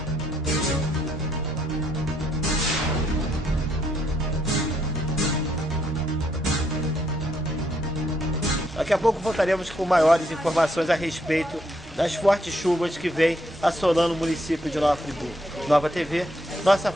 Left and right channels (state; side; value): normal; both; correlation 0.73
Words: Daqui a pouco voltaremos com maiores informações a respeito das fortes chuvas que vêm assolando o município de Nova Friburgo. Nova TV, nossa